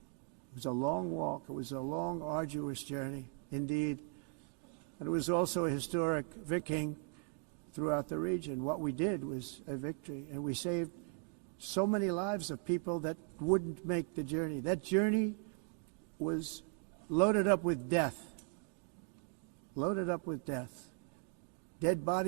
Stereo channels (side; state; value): left; quieter; 39.7 dB